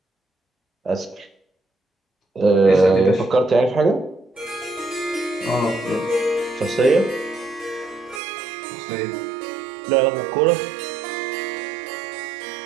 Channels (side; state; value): left; drops out; at 8.2 s